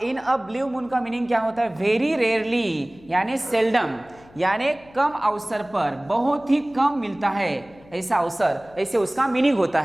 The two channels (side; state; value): left; noise; hum, 25 dB below the sound